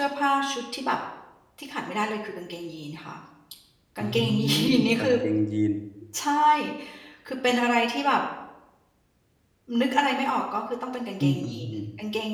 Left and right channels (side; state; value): both; identical; correlation 1.00